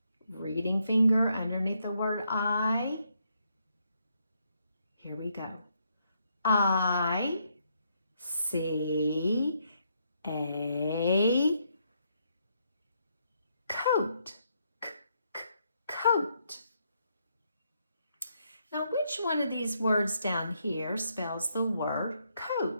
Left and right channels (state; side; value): inverted; both; correlation -0.75